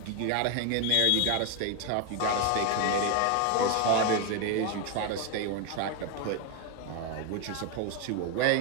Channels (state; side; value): different; both; correlation 0.01